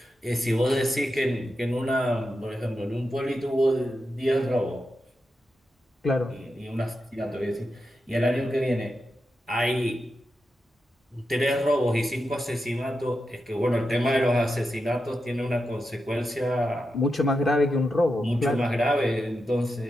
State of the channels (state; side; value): normal; both; correlation 0.88